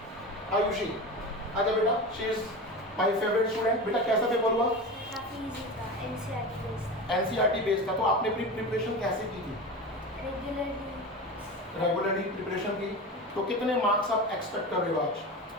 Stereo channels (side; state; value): both; normal; correlation 0.27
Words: आयुषी, आजा बेटा, she is my favourite student. बेटा कैसा पेपर हुआ? काफी इजी था, एनसीईआरटी बेस्ड। एनसीईआरटी बेस्ड था। तो आपने अपनी प्रिपरेशन कैसे की थी? रेगुलरली प्रिपरेशन की। तो कितने मार्क्स आप एक्सपेक्ट कर रहे हो आज?